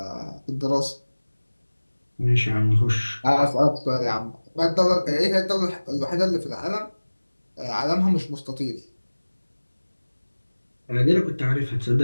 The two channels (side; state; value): both; inverted; correlation -1.00